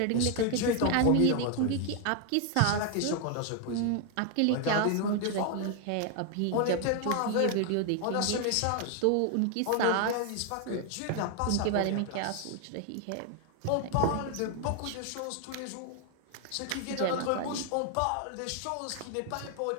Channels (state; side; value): different; both; correlation 0.00